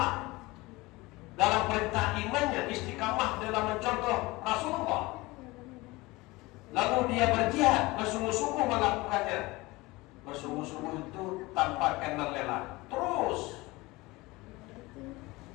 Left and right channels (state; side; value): quieter; right; 21.7 dB